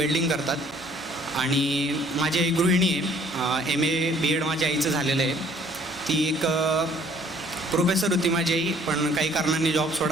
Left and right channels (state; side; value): normal; both; correlation 0.59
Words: करतात आणि माझी आई गृहिणी आहे. MA BEd माझ्या आईचं झालेलं आहे. ती एक प्रोफेसर होती माझी आई, पण काही कारणांनी जॉब